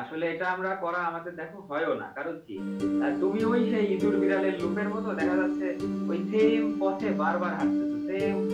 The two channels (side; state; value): both; identical; correlation 1.00